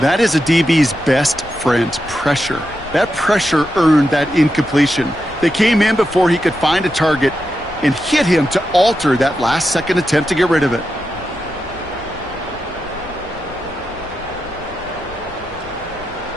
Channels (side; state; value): left; noise; rumble, 18 dB below the sound